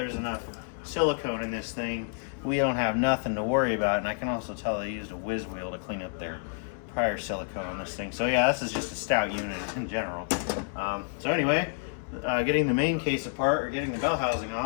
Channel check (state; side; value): silent; right; 58 dB below the other